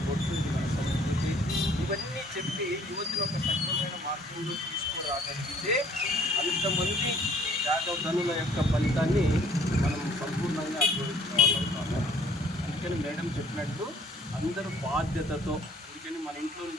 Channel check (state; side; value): normal; both; correlation 0.58